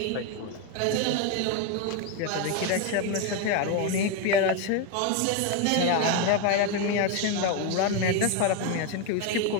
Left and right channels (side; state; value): both; different; correlation 0.02